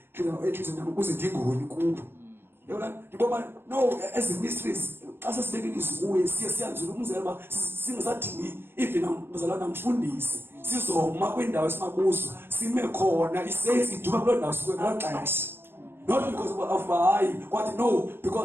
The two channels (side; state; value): left; late; 0.11 ms